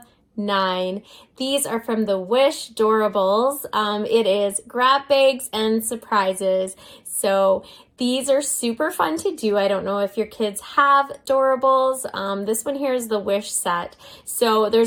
9. These are from the Wish Doorables. It is grab bags and surprises. So these are super fun to do. I don't know if your kids have Doorables. This one here is the Wish set. So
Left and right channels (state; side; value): identical; both; correlation 1.00